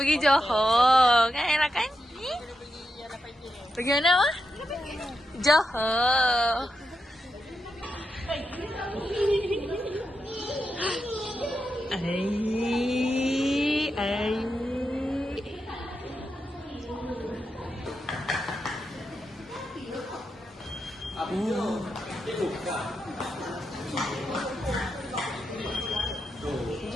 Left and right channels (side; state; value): both; normal; correlation 0.86